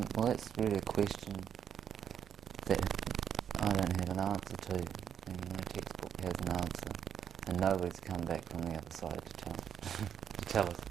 Well, that's really a question that I don't have an answer to. No textbook has an answer, and nobody's come back from the other side to tell us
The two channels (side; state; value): left; quieter; 8.5 dB